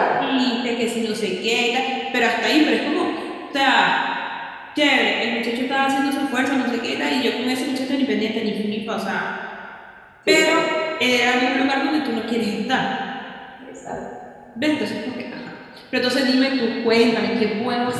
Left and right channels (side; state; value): both; identical; correlation 1.00